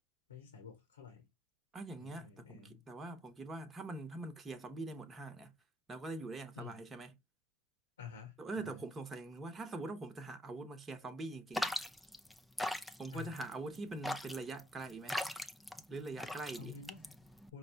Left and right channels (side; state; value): both; normal; correlation 0.74